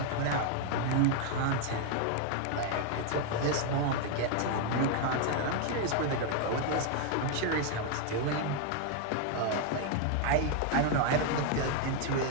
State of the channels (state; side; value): different; both; correlation 0.01